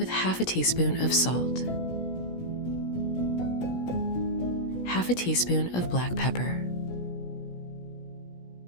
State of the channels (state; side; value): late; right; 17 ms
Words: half a teaspoon of salt, half a teaspoon of black pepper,